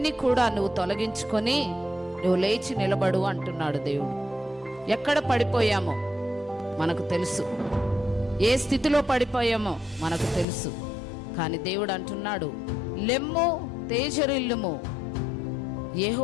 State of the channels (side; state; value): right; drops out; at 10.5 s